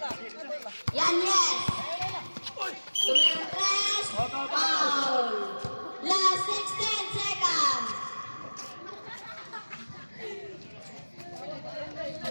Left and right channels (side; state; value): both; inverted; correlation -1.00